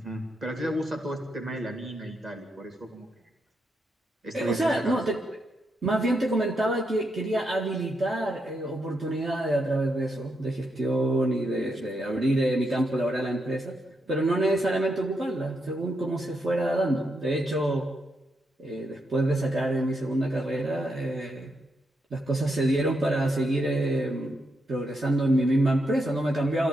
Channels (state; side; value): normal; both; correlation 0.81